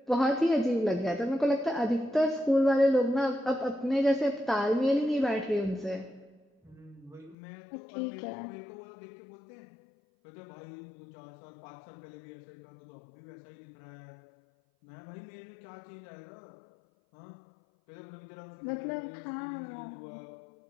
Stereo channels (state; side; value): drops out; right; at 7.4 s